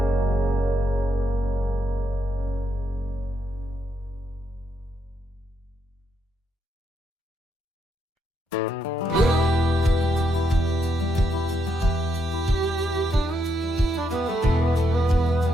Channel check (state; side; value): normal; both; correlation 0.79